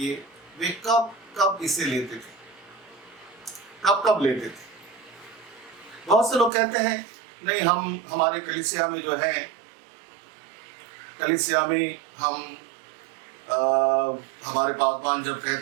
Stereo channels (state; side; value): drops out; left; at 6.5 s